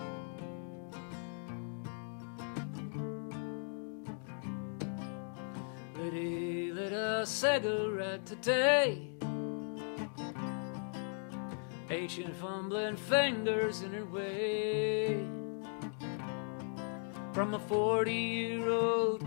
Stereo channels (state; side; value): silent; right; 53 dB below the other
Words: Lydia lit a cigarette today, ancient fumbling fingers in her way. From a 40-year-old